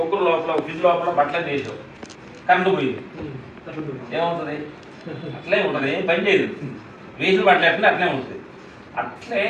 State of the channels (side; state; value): both; identical; correlation 1.00